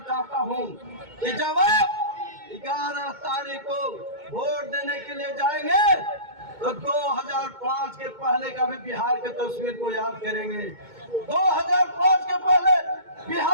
चाहता हूँ कि जब आप 11 तारीख को वोट देने के लिए जाएंगे तो 2005 के पहले का भी बिहार की तस्वीर को याद करेंगे। 2005 के पहले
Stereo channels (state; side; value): late; left; 2.2 ms